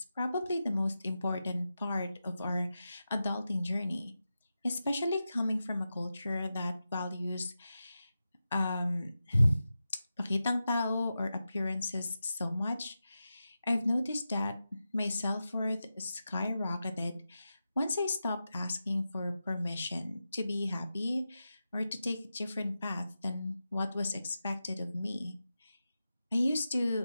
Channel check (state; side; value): inverted; both; correlation -0.91